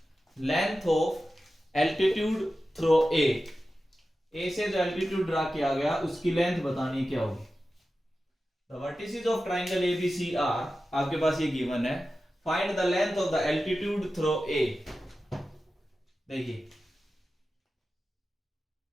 length of altitude through A. A से जो एल्टीट्यूड ड्रा किया गया उसकी लेंथ बतानी क्या होगी। The vertices of triangle ABCR आपके पास ये गिवन है। Find the length of the altitude through A। देखिए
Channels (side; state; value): both; normal; correlation 0.93